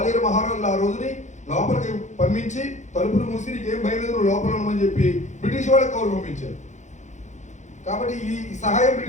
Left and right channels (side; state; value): right; late; 0.35 ms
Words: మహారాజులు ఆ రోజుని లోపలికి పంపించి తలుపులు మూసి నీకేం భయలేదు లోపల ఉండమని చెప్పి బ్రిటిష్ వాళ్ళకి కౌరు పంపించారు. కాబట్టి ఈ సహాయం